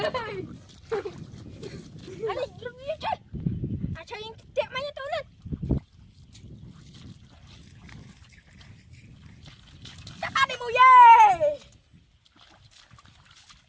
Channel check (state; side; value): identical; both; correlation 1.00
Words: anh đi đừng đi chơi anh chơi tiệm máy cho tôi lên chắc ba đi mùi dê